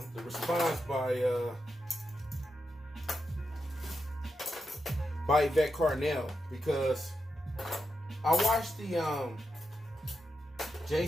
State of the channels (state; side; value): normal; both; correlation 0.87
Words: response by Yvette Carnell, because I watched the